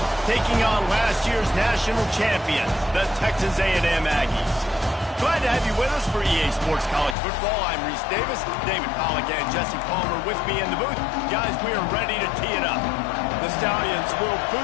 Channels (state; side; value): drops out; right; at 7.2 s